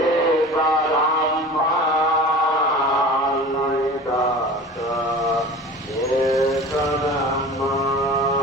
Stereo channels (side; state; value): both; normal; correlation 0.37